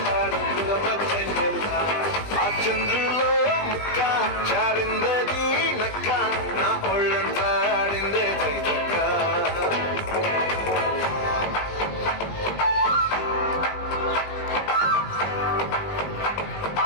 చంద్రులో ముక్క చారిందది నక్క నా ఒళ్ళంతా ఆడిందే దైతక్క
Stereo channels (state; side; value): late; right; 20 ms